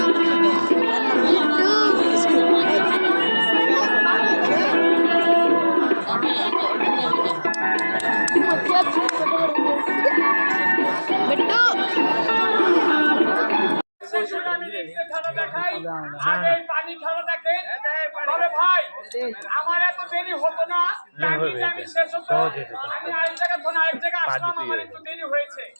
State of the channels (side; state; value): both; inverted; correlation -1.00